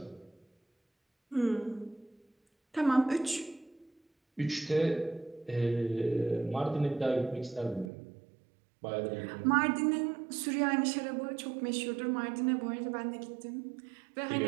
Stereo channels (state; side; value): drops out; left; at 7.9 s